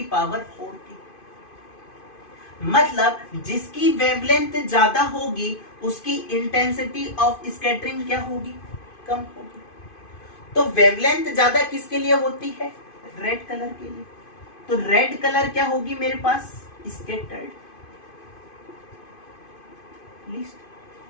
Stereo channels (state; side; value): late; right; 2.5 ms